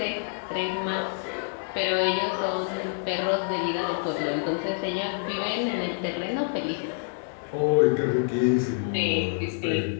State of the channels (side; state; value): right; silent; 60 dB below the other